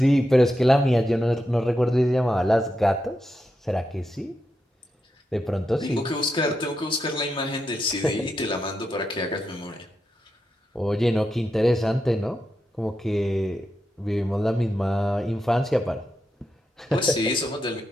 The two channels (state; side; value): normal; both; correlation 0.86